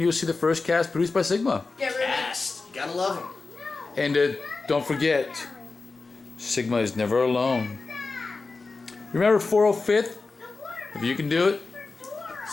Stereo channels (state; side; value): quieter; right; 3.9 dB